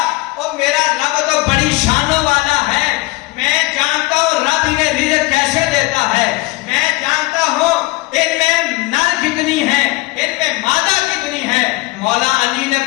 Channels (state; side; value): quieter; right; 21.7 dB